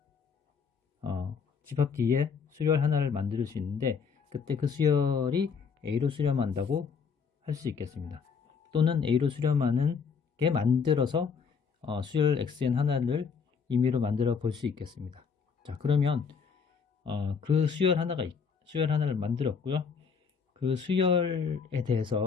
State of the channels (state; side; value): quieter; right; 5.9 dB